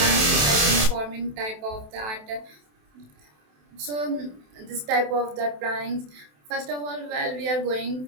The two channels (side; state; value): left; late; 27 ms